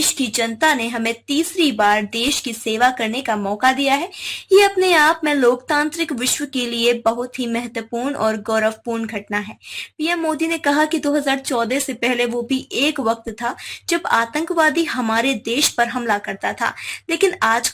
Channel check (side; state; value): both; identical; correlation 1.00